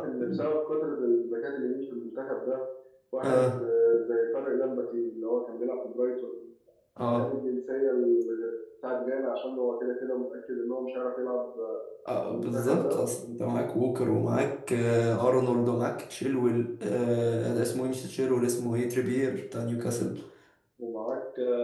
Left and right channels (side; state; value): both; identical; correlation 1.00